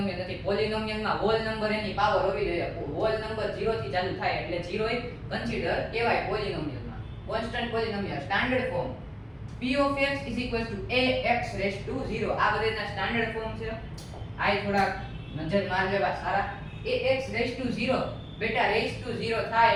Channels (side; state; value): both; identical; correlation 1.00